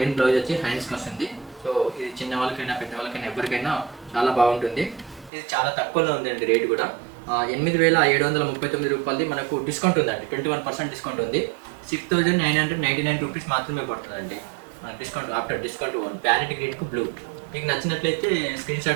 బ్లౌజ్ వచ్చి హ్యాండ్స్కి వస్తుంది. సో ఇది చిన్న వాళ్ళకైనా పెద్ద వాళ్ళకైనా ఎవరికైనా చాలా బాగుంటుంది. ఇది చాలా తక్కువలో ఉందండి. రేట్ కూడా 8,739 రూపాయలది మనకు డిస్కౌంట్ ఉందండి. 21% డిస్కౌంట్ ఉంది. 6,999 రూపీస్ మాత్రమే పడుతుందండి డిస్కౌంట్. ఆఫ్టర్ డిస్కౌంట్ ప్యారెట్ గ్రీన్కు బ్లూ. మీకు నచ్చినట్లయితే స్క్రీన్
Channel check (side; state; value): left; drops out; at 5.3 s